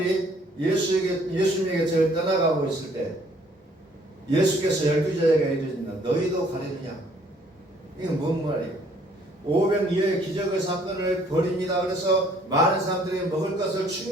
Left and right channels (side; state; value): both; normal; correlation 0.61